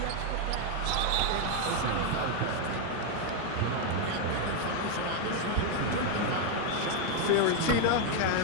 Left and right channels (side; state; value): both; different; correlation 0.01